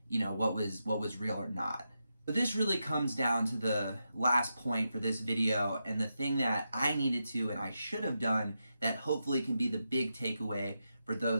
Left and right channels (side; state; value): both; inverted; correlation -0.87